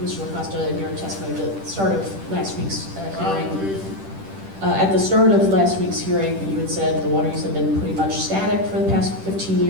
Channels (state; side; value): late; left; 10 ms